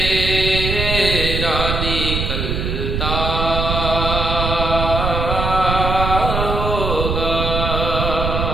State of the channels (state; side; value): noise; right; rumble, 2 dB below the sound